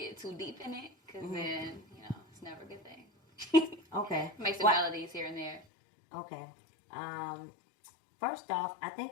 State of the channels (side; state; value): right; drops out; at 5.7 s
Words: too deep in it, because then, it's never a good thing. Okay. Make some melodies here and there. Okay. First off, I